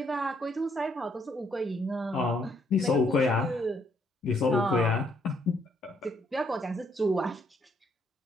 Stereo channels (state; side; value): normal; both; correlation 0.71